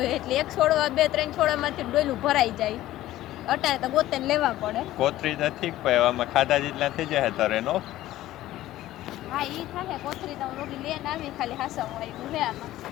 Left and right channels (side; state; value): right; quieter; 14.9 dB